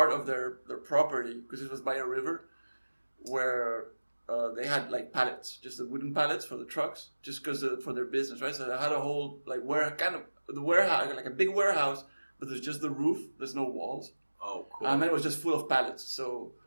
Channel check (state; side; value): inverted; both; correlation -1.00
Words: of their property, because it was by a river, where they had like pallets, just the wooden pallets for the trucks, just because for their business, right? So they had a whole like the warehouse, like a big warehouse, but there's just the roof. There's no walls. Oh, cool. And then it was just full of pallets. So